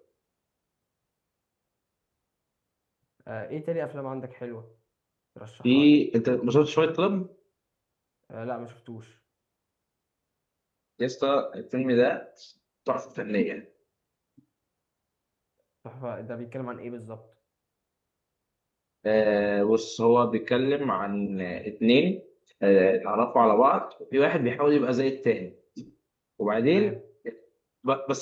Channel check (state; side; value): identical; both; correlation 1.00